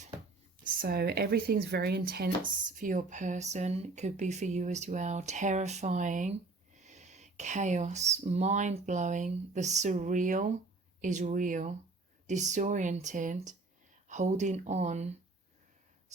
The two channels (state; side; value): quieter; left; 3.5 dB